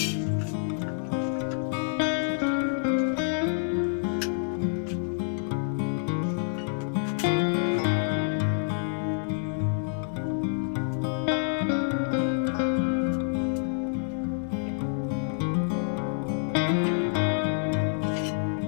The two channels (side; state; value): right; silent; digital silence